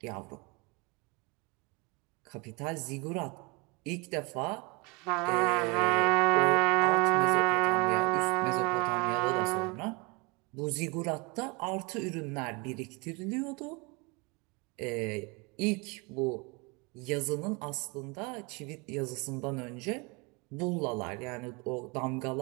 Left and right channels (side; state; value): left; quieter; 26.8 dB